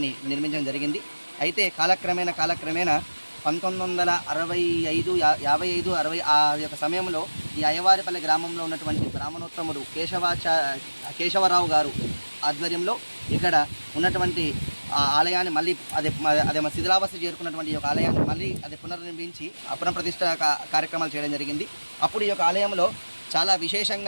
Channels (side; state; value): both; inverted; correlation -1.00